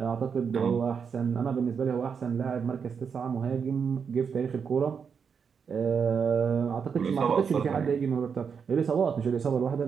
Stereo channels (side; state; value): left; quieter; 6.4 dB